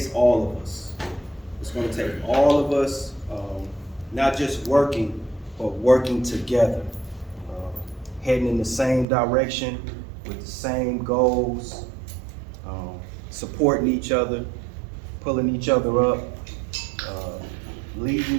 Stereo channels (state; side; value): drops out; left; at 9.1 s